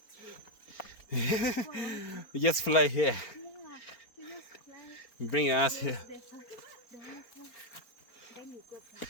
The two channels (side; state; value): right; late; 4.4 ms